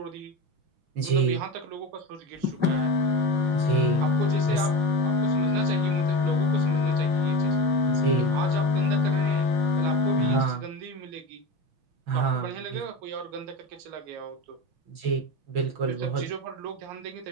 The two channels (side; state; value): left; late; 6.1 ms